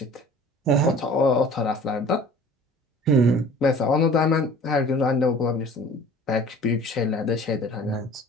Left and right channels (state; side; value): normal; both; correlation 0.46